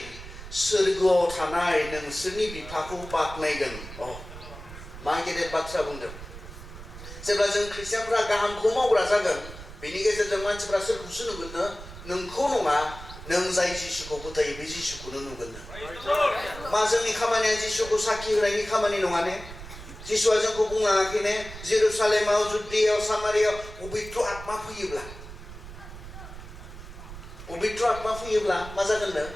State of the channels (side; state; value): right; noise; rumble, 13 dB below the sound